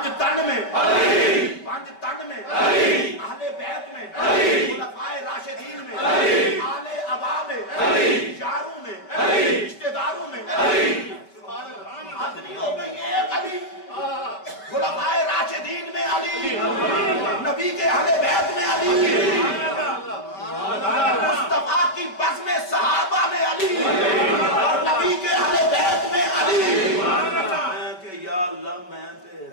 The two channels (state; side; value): late; right; 5.3 ms